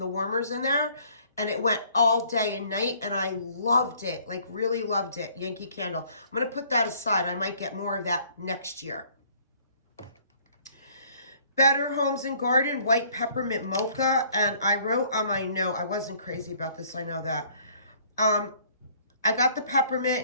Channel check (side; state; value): both; inverted; correlation -0.59